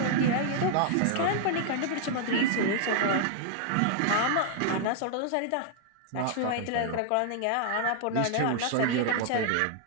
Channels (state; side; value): different; both; correlation 0.00